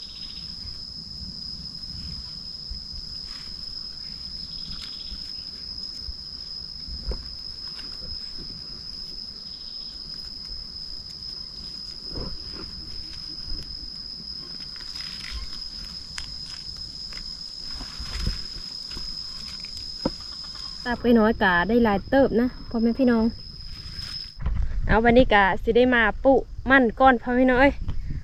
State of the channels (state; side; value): identical; both; correlation 1.00